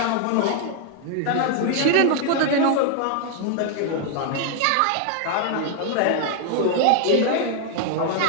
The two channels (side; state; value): both; different; correlation 0.00